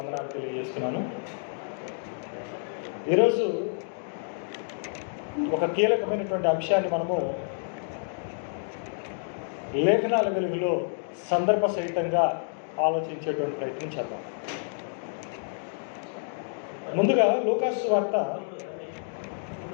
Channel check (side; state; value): right; silent; digital silence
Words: తెలియజేస్తున్నాను. ఈరోజు ఒక కీలకమైనటువంటి అంశాన్ని మనము లేఖనాల వెలుగులో సందర్భ సహితంగా ఆలోచించేటువంటి ప్రయత్నం చేద్దాం. ముందుగా లూకాసు వార్త